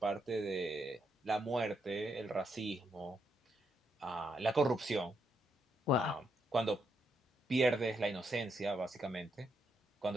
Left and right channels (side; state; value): both; normal; correlation 0.79